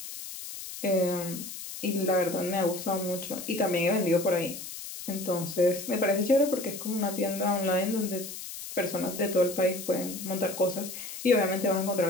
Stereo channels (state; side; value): noise; left; hiss, 10 dB below the sound